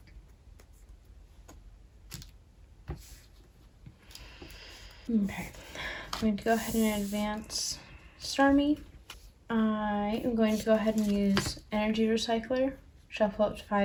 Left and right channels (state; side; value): identical; both; correlation 1.00